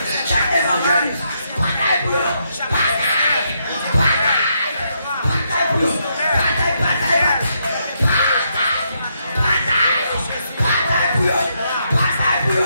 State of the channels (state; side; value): inverted; both; correlation -0.78